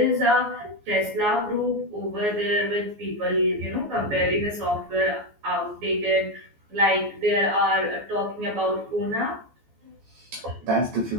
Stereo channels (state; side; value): late; left; 14 ms